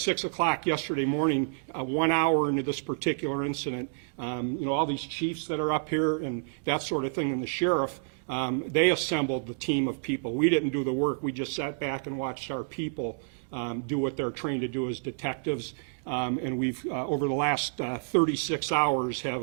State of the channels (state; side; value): silent; left; digital silence